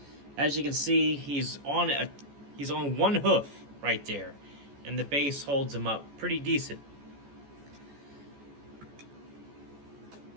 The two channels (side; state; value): left; late; 14 ms